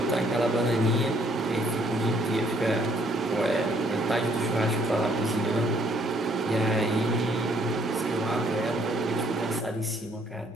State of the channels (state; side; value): normal; both; correlation 0.65